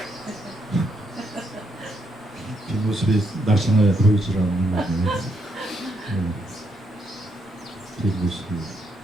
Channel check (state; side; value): normal; both; correlation 0.76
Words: 뒷모습이 날씬해 보이질 않는 거네요. 뒷모습이.